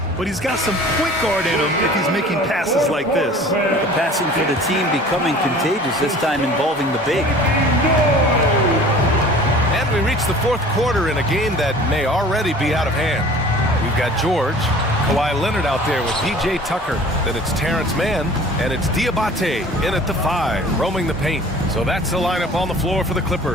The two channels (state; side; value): normal; both; correlation 0.45